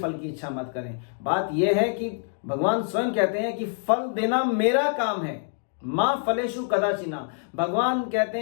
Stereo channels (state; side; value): silent; right; digital silence